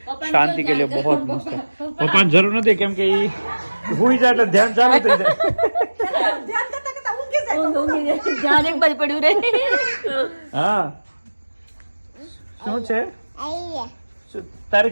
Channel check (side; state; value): both; inverted; correlation -1.00